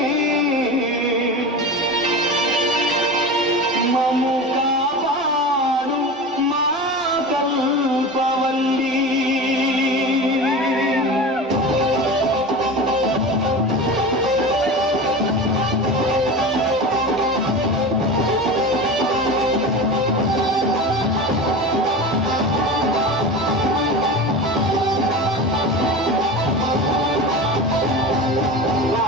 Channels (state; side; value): normal; both; correlation 0.29